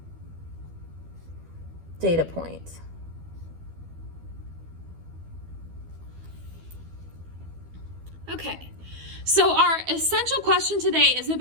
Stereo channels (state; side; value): late; left; 12 ms